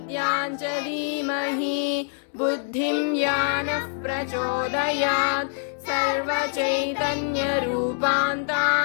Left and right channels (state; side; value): silent; right; digital silence